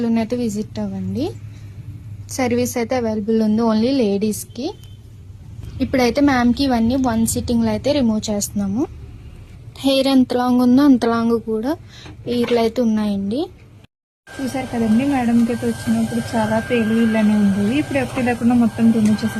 అయితే విజిట్ అవ్వండి. సర్వీస్ అయితే అవైలబుల్ ఉంది ఓన్లీ లేడీస్ కి. ఇప్పుడైతే మ్యామ్ కి ఇవన్నీ 1 సిట్టింగ్ లో అయితే రిమూవ్ చేస్తున్నాము. హెయిర్ ఎంత లాంగ్ ఉందో అంత లాంగ్ కూడా ఈర్లు అయితే ఉన్నాయండి. చూసారు కదండి మేడంకి అయితే వచ్చినప్పుడు చాలా పేలు ఇలానే ఉండేవి. ఇప్పుడు ఎప్పుడు లేకుండా మొత్తం రిమూవ్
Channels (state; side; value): identical; both; correlation 1.00